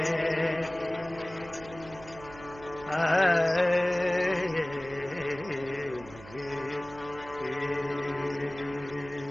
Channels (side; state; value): right; noise; hum, 18 dB below the sound